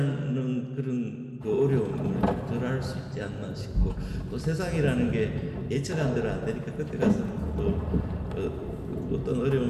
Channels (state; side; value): identical; both; correlation 1.00